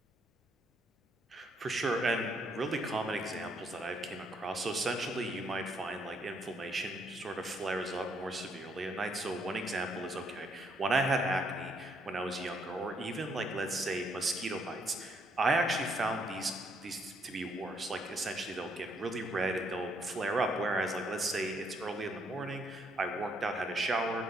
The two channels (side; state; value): both; normal; correlation 0.71